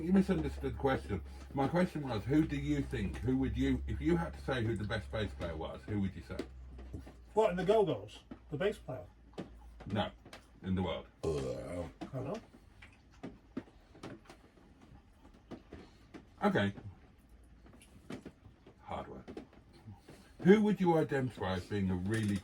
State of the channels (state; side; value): identical; both; correlation 1.00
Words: you misunderstood the question. My question was, who do you think, who would you, if you had to say who the best bass player was, who would you say? What, in the Go-Go's? The bass player? No, in the world. I don't know. Okay. Hard work. Who would you identify as being a really